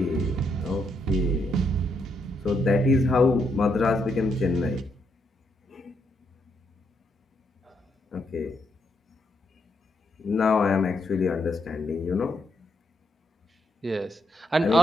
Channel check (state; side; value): normal; both; correlation 0.78